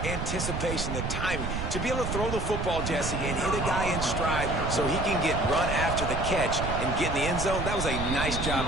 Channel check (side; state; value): right; noise; rumble, 3 dB below the sound